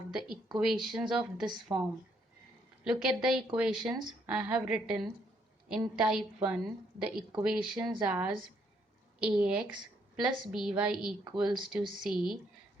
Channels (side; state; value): both; normal; correlation 0.71